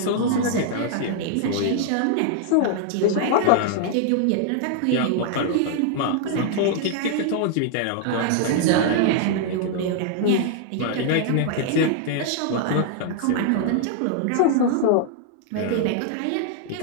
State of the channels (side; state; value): both; different; correlation -0.01